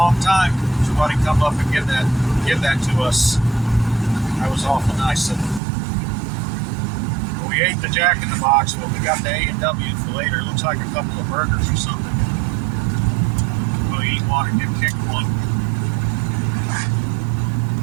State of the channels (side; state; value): left; drops out; at 5.6 s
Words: time. Somebody come up and give that to us. That was awful nice of them. We We ate the Jack in the Box, but we got the A&W for later. It looks like a couple of burgers or something. We'll eat one and get kicked one.